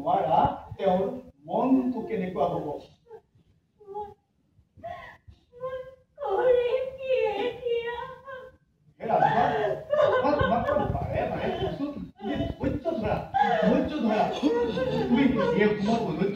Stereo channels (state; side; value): identical; both; correlation 1.00